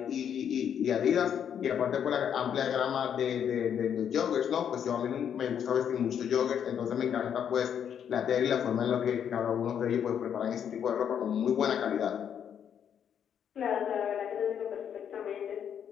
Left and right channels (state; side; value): quieter; right; 8.6 dB